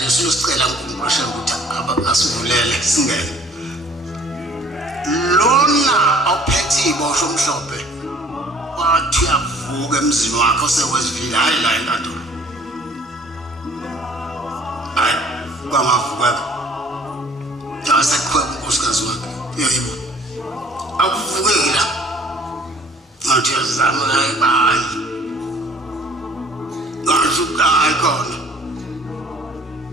siyosicela uNkulunkulu ukuthi asivulele singene lona ophethe iboshwa omhlophe wathi avuka emzini wakhe osewesivile hayi la enkantolo hayi kwamavuka jasekhweba unkosikazi wakhe yebo akuvukeki la ngathi yazama la ebayi ngasukayi khona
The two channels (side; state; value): both; normal; correlation 0.53